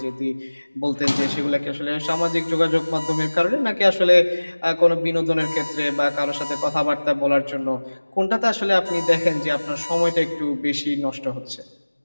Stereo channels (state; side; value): inverted; both; correlation -1.00